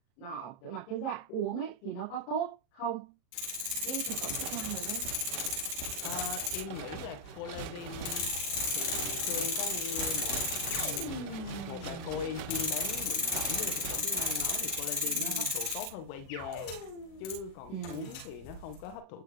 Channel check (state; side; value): late; right; 37 ms